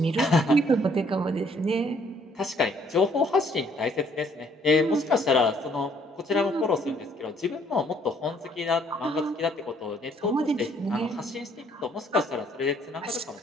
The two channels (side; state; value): both; normal; correlation 0.64